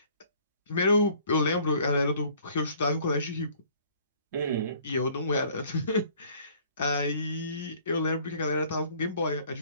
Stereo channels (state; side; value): inverted; both; correlation -0.56